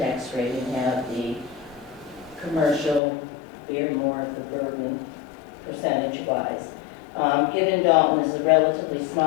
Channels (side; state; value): right; drops out; at 3.0 s